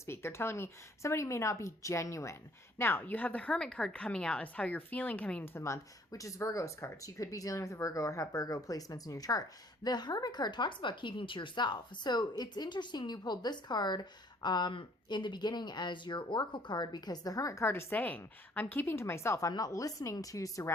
They're telling me somebody may not be genuine. Now, you have the Hermit card coming out as how you're feeling coming into the month, which is Virgo's card. So you could be dealing with a Virgo or have Virgo placements in your chart. The Hermit card talks about keeping to yourself. So it's interesting you pulled this card in the beginning as your oracle card, because the Hermit card is saying, I'm keeping to myself. I'm not listening to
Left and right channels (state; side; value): normal; both; correlation 0.60